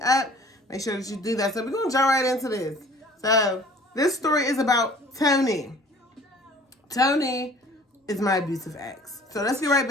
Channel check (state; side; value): normal; both; correlation 0.50